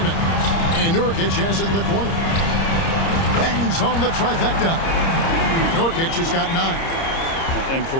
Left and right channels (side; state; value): right; late; 30 ms